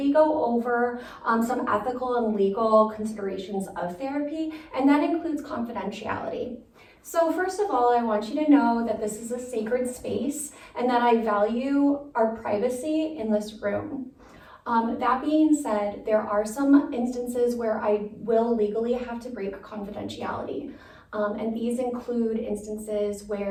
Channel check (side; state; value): both; identical; correlation 1.00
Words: go over some ethical and legal considerations of therapy, and that includes confidentiality. So first of all, I want you to know that this is a sacred space and that I value our privacy in this room. That being said, there are some instances where I will legally have to break confidentiality. And these include instances